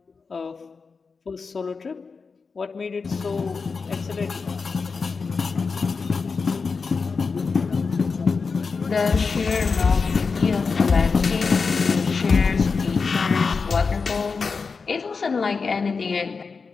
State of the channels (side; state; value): right; quieter; 4.8 dB